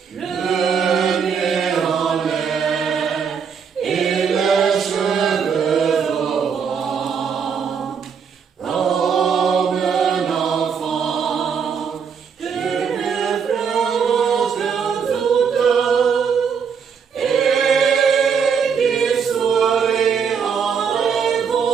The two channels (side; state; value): left; quieter; 6.6 dB